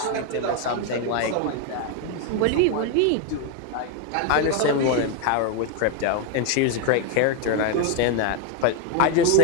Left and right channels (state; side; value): different; both; correlation 0.01